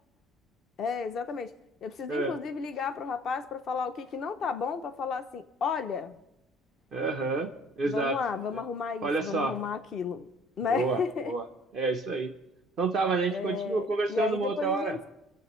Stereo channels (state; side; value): normal; both; correlation 0.54